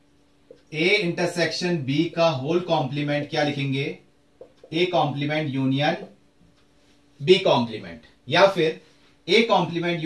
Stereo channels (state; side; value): identical; both; correlation 1.00